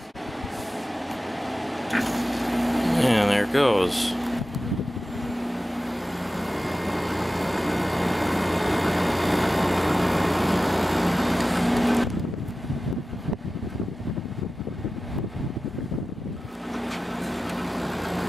And there it goes.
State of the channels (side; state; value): both; normal; correlation 0.94